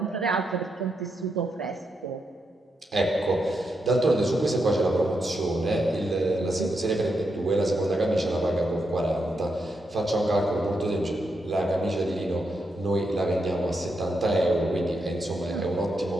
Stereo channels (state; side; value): normal; both; correlation 0.83